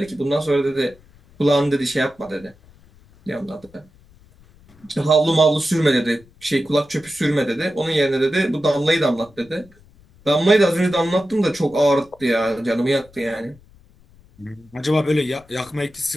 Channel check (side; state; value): left; noise; rumble, 27 dB below the sound